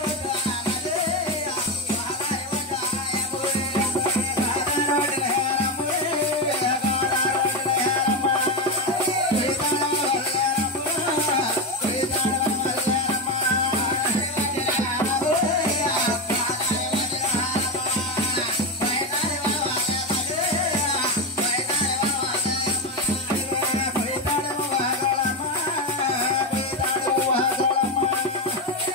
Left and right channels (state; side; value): normal; both; correlation 0.13